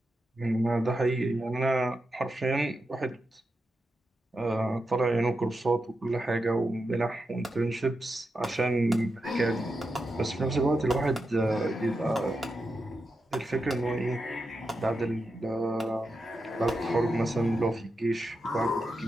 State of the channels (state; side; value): normal; both; correlation 0.87